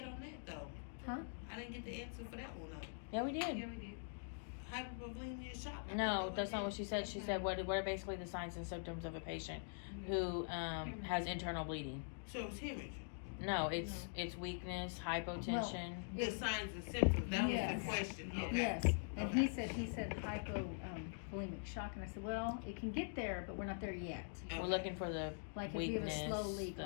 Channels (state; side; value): silent; right; digital silence